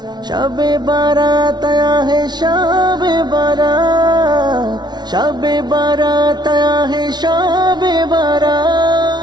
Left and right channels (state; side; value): late; left; 0.20 ms